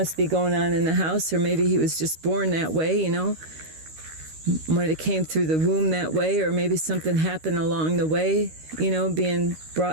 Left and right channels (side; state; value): left; late; 13 ms